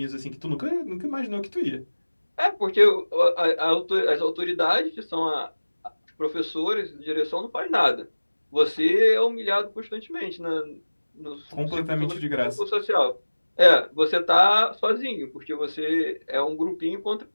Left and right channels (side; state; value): both; inverted; correlation -1.00